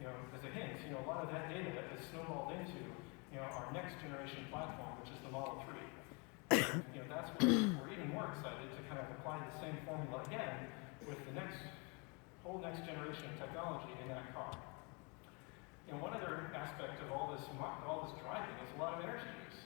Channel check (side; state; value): right; quieter; 32.0 dB